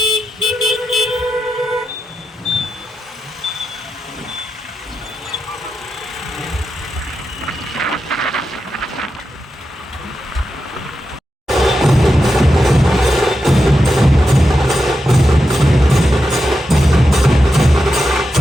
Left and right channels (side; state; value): both; normal; correlation 0.88